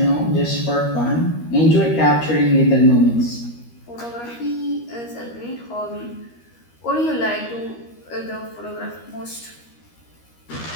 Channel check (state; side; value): late; right; 13 ms